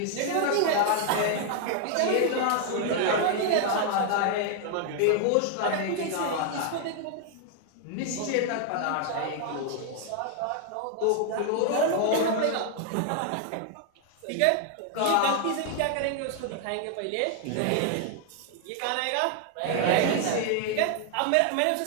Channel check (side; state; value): both; different; correlation 0.00